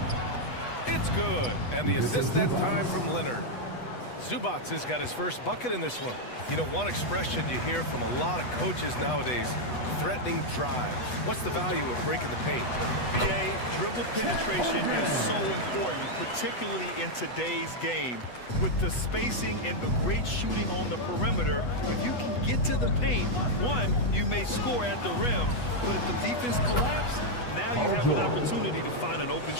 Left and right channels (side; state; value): right; late; 8.1 ms